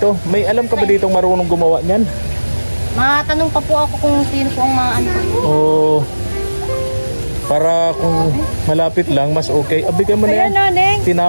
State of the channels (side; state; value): both; inverted; correlation -1.00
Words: May alam ka ba ditong marunong gumawa niyan? Matanong pa po ako kung sino po ang mga ano. Oh. Para kung malapit lang, mas okay. Bigyan mo na yan. Ayan, Neng.